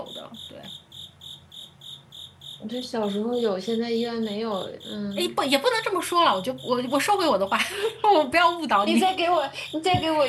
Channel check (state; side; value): identical; both; correlation 1.00